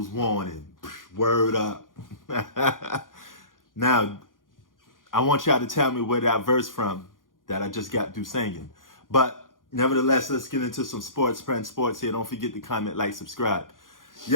warning. Word up. Now, I want y'all to tell me where that verse from that I just got through singing. But nevertheless, let's get into some sports, friend sports here. Don't forget to comment, like, subscribe.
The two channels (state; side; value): late; right; 0.89 ms